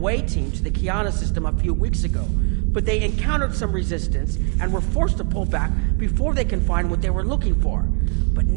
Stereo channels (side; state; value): left; quieter; 35.2 dB